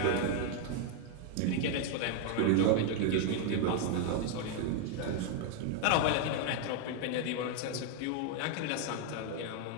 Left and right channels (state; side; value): different; both; correlation 0.01